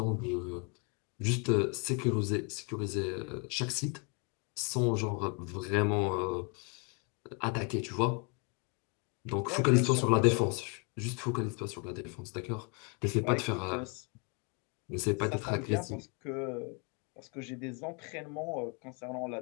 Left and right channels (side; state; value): right; quieter; 34.6 dB